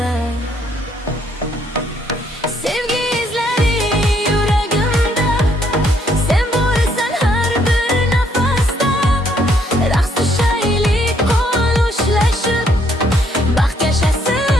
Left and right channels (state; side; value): normal; both; correlation 0.69